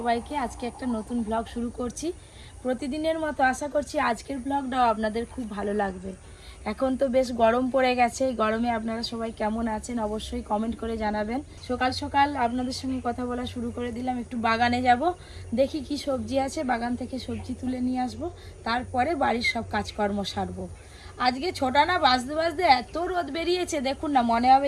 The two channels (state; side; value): identical; both; correlation 1.00